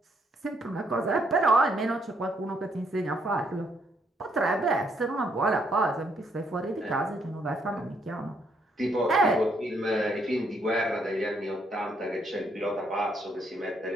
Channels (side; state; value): both; normal; correlation 0.72